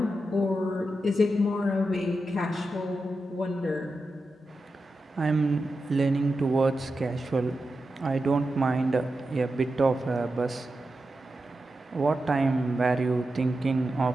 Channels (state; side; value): normal; both; correlation 0.90